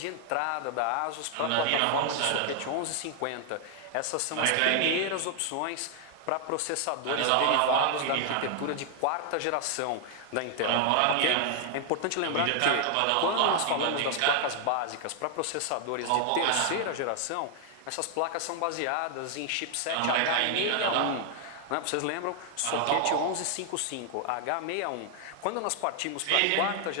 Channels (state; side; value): different; both; correlation 0.00